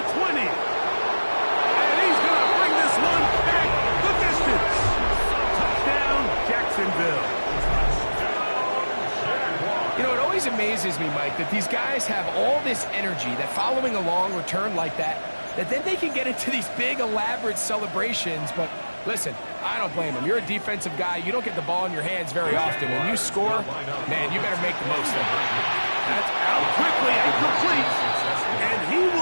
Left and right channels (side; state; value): both; inverted; correlation -1.00